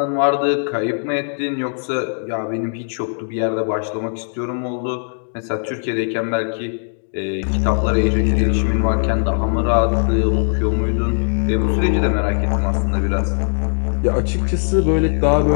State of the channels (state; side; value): silent; right; digital silence